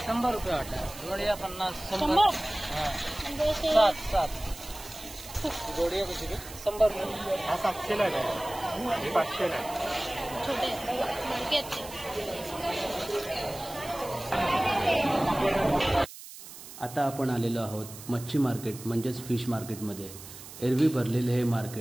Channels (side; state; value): right; noise; hiss, 14 dB below the sound